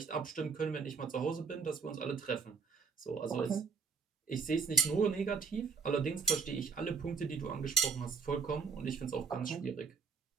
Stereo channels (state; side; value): quieter; left; 5.5 dB